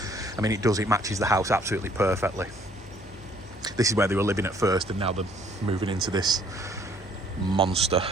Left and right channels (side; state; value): both; normal; correlation 0.61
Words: I mean, it matches the house absolutely perfectly. This is where they were living at first, and now they're moving into this monster.